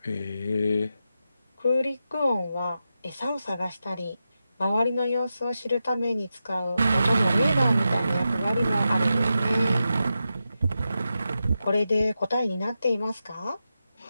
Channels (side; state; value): both; inverted; correlation -0.89